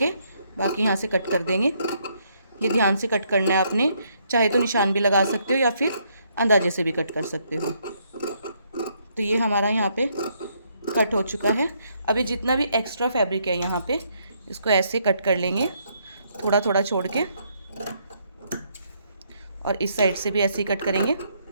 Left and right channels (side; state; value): both; inverted; correlation -0.72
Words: बाकी यहाँ से कट कर देंगे। ये ध्यान से कट करना है आपने, चाहे तो निशान भी लगा सकते हो या फिर अंदाजे से भी कट कर सकते हो। तो ये हमारा यहाँ पे कट हो चुका है। अभी जितना भी एक्स्ट्रा फैब्रिक है यहाँ पे इसको ऐसे कट कर लेंगे, थोड़ा थोड़ा छोड़ के, और इस साइड से भी ऐसे ही कट करेंगे।